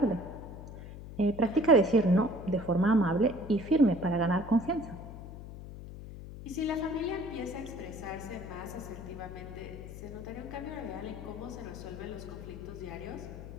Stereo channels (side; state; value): left; noise; hum, 12 dB below the sound